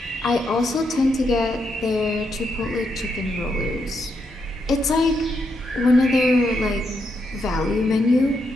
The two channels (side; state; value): both; normal; correlation 0.80